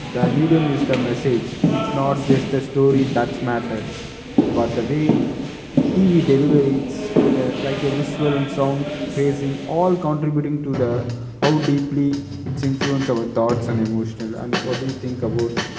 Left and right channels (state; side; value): identical; both; correlation 1.00